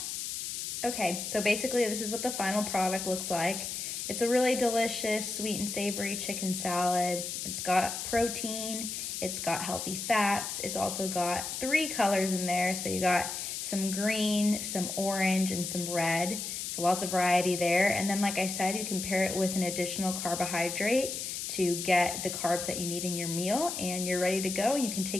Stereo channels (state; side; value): noise; left; hiss, 5 dB below the sound